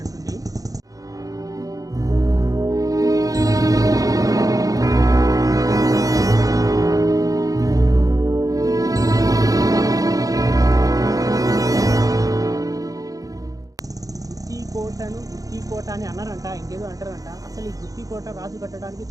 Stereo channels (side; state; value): left; late; 0.17 ms